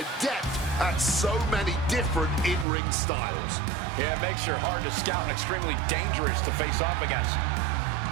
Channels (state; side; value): drops out; left; at 2.7 s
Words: at so many different in-ring styles. Yeah, it makes her hard to scout and extremely dangerous to face off against.